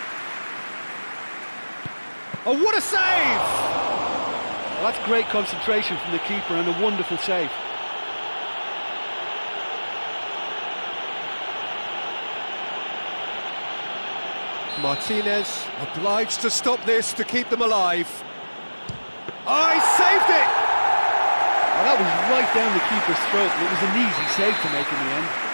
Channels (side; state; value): both; inverted; correlation -1.00